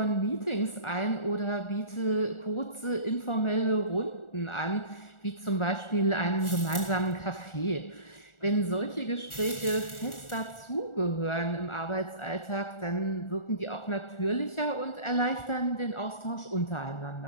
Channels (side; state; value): right; late; 1.4 ms